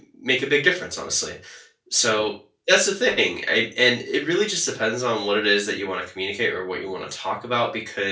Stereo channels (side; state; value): both; identical; correlation 1.00